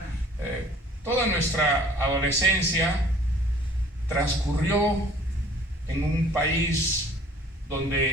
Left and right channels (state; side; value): normal; both; correlation 0.53